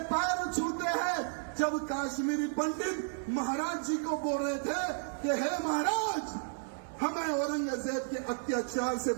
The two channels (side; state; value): left; silent; digital silence